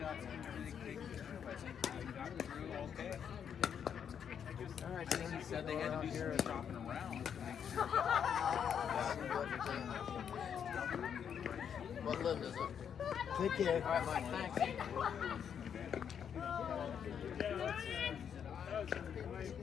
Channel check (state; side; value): quieter; right; 8.0 dB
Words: some really big serve, I think he got through okay. All right, I think he said they had to do some shopping around to make sure. What limb is it? Take care. All right, Mike, thanks.